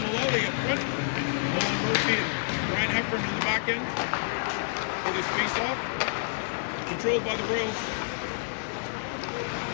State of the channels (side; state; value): right; silent; 59 dB below the other